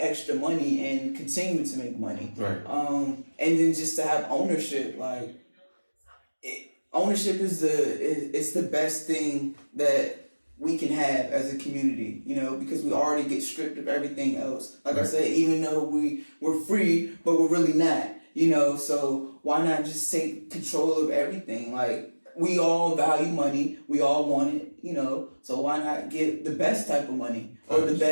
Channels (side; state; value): both; inverted; correlation -1.00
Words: money and continue to make money. Right. And then just to have ownership, like ownership is the best thing that we can have as a community, you know, because we already get stripped of everything else. Like I said, even though we're free, but we're really not, you know, so why not just take control of everything? Like, we all value money. We all want it, you know. So why not get the best type of money or the